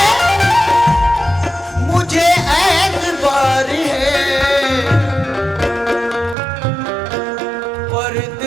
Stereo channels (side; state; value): left; drops out; at 6.4 s